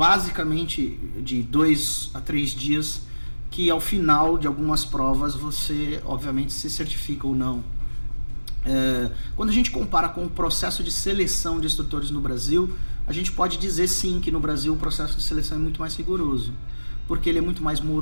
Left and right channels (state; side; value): inverted; both; correlation -1.00